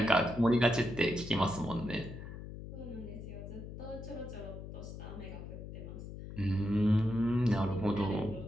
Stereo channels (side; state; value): left; noise; hum, 10 dB below the sound